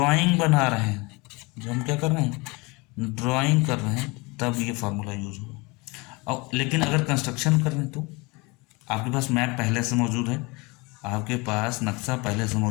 बना रहे हैं, जब हम क्या कर रहे हैं, ड्राइंग कर रहे हैं, तब ये फार्मूला यूज होगा। और लेकिन अगर कंस्ट्रक्शन कर रहे हैं तो आपके पास मैप पहले से मौजूद है, आपके पास नक्शा पहले से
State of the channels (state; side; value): quieter; right; 26.5 dB